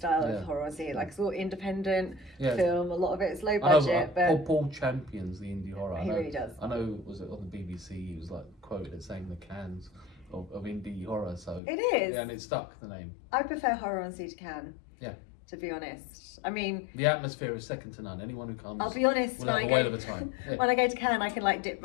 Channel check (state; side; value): drops out; right; at 11.6 s